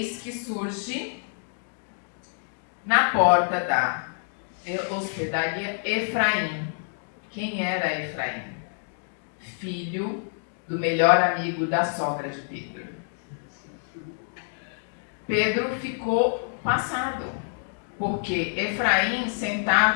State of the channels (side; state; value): right; silent; digital silence